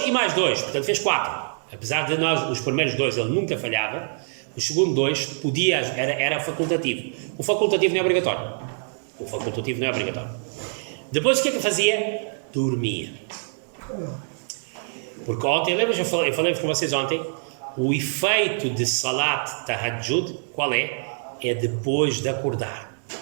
e mais 2. Portanto, fez 4. Apesar de os primeiros 2 ele nunca falhava, o segundo 2 era facultativo. O facultativo não é obrigatório. Depois o que é que fazia? Dormia. Porque ontem, lembra, eu falei com vocês ontem, o efeito de Salat Tahajjud, qual é? É depois de acordar.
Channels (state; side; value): silent; left; 62 dB below the other